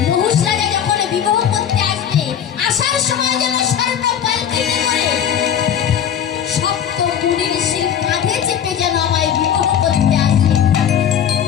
নহুষ রাজা যখন বিবাহ করতে আসবে, আসার সময় যেন স্বর্ণ পালকিতে করে সপ্ত মুনি ঋষির কাঁধে চেপে যেন আমায় বিবাহ করতে আসে।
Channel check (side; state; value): right; quieter; 9.0 dB